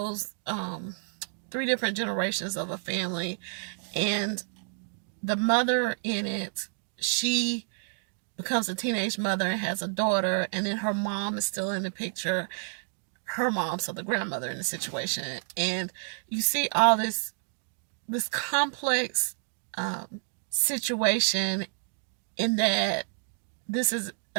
three different generations of a family. And the mother in it, she becomes a teenage mother and has a daughter, and then her mom is still in the picture. Her mom, so the grandmother in the situation, and you see all this complex situation in that this is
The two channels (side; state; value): left; silent; digital silence